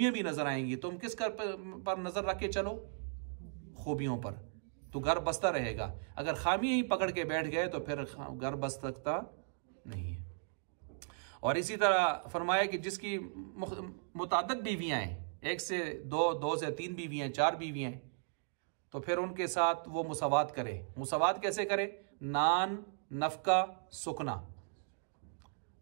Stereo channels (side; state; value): left; silent; digital silence